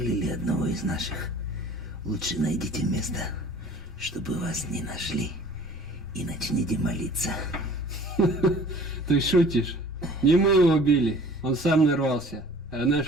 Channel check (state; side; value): noise; left; rumble, 24 dB below the sound